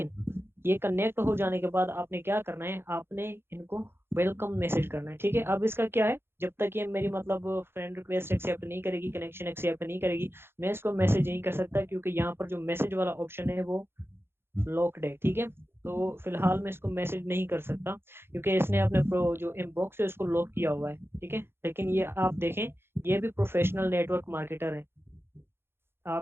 ये कनेक्ट हो जाने के बाद आपने क्या करना है, आपने इनको वेलकम मैसेज करना है, ठीक है। अब इसका क्या है, जब तक ये मेरी मतलब फ्रेंड रिक्वेस्ट एक्सेप्ट नहीं करेगी, कनेक्शन एक्सेप्ट नहीं करेगी, मैं इसको मैसेज नहीं कर सकता, क्योंकि यहाँ पर जो मैसेज वाला ऑप्शन है वो लॉक्ड है, ठीक है। तो फिलहाल मैं इसको मैसेज नहीं कर सकता, क्योंकि इसने अपने जो इनबॉक्स है उसको लॉक किया हुआ है, ठीक है। लेकिन ये आप देखें, ये भी प्रोफेशनल नेटवर्क मार्केटर है,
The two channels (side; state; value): left; late; 0.11 ms